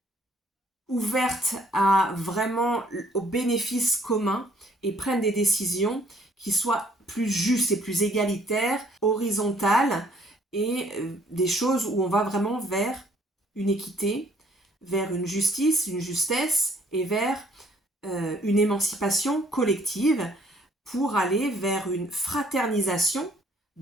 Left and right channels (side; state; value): both; normal; correlation 0.61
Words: ouvertes à vraiment au bénéfice commun et prennent des décisions qui soient plus justes et plus égalitaires, horizontales et des choses où on va vraiment vers une équité, vers une justice, une justesse et vers une émancipation collective pour aller vers une fraternisation